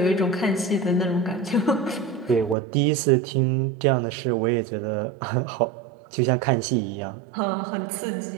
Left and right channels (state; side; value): drops out; left; at 2.6 s